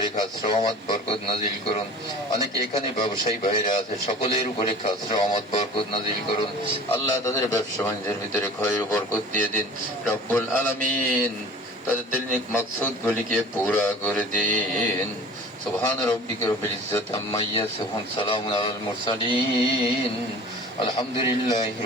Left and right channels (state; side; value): normal; both; correlation 0.42